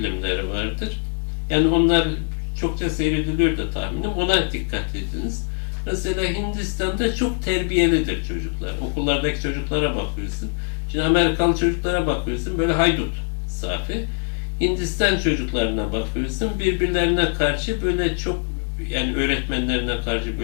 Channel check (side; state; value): right; silent; 64 dB below the other